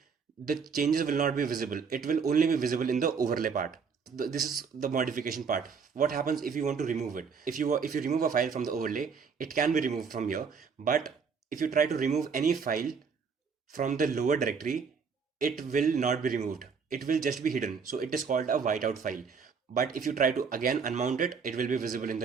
the changes will not be visible. It will only be visible in the overlay part. This is the modification part. What happens if you want to remove it? If you remove a file from the overlay, it can be removed from here. But if you try to remove any file from the lower directory, it will not be removed. It will just be hidden. So it is called a whiteout file. But if you try to again unmount it, it will be visible in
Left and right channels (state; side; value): quieter; left; 5.8 dB